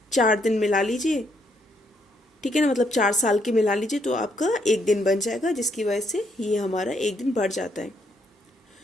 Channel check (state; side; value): normal; both; correlation 0.73